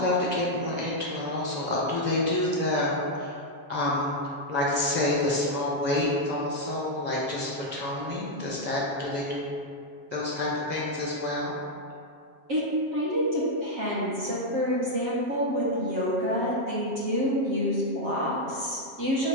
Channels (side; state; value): left; late; 7.5 ms